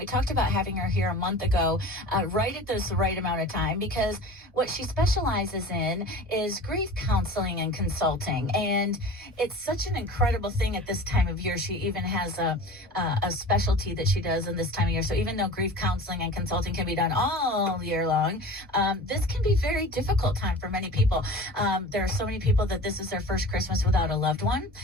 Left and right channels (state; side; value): normal; both; correlation 0.38